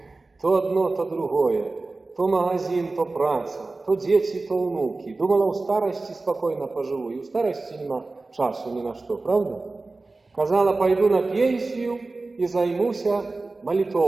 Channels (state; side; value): quieter; left; 3.4 dB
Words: То одно, то другое. То магазин, то праца, то дети, то внуки. Думала, у старости спокойно поживу, и у старости нема часу ни на что, правда? Казала, пойду на пенсию и займуся